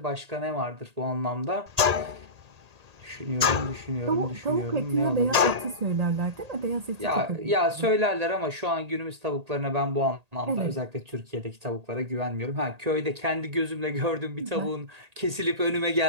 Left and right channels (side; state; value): left; late; 1.8 ms